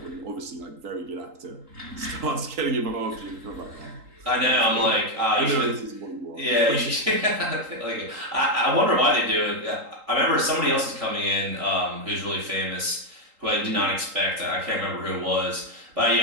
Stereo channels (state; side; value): late; left; 3.8 ms